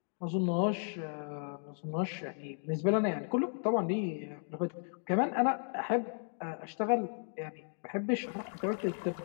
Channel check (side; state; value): right; silent; 55 dB below the other